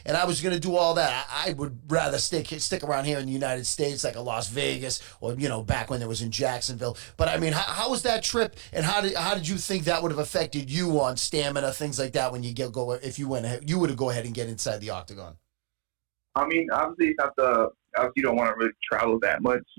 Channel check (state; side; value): quieter; left; 39.6 dB